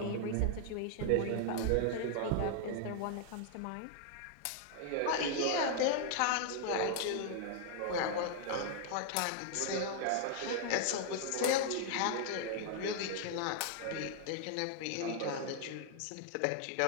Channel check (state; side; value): different; both; correlation 0.00